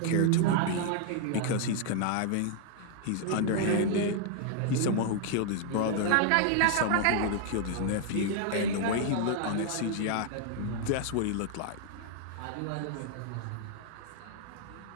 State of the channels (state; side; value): different; both; correlation 0.00